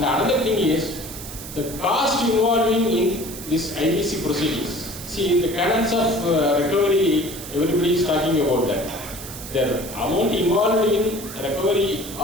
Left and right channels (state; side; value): noise; right; hiss, 12 dB below the sound